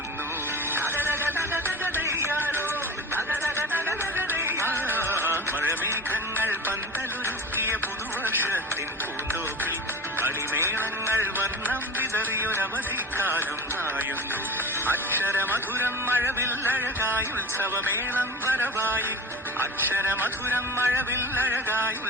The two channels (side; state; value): both; normal; correlation 0.33